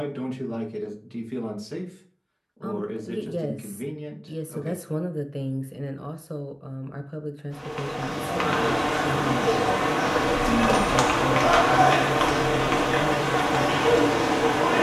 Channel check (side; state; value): both; identical; correlation 1.00